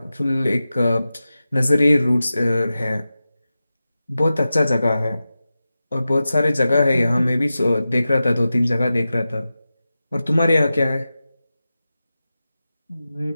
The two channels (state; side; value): inverted; both; correlation -0.94